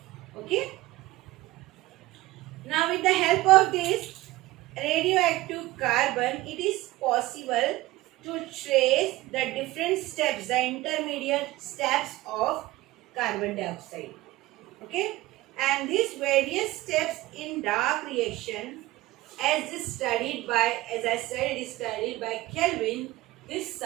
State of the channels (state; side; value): quieter; left; 18.3 dB